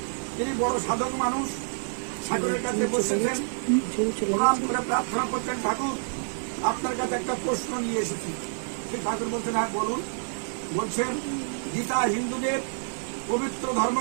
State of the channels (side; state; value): left; silent; digital silence